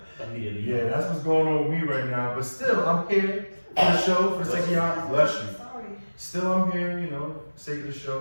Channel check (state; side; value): inverted; both; correlation -1.00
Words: Immediately. Yeah, that's what's going on with me right now. But still, I'm here for the show, for the sake of y'all. Bless you. Sorry. Still, I'm here, you know, for the sake of the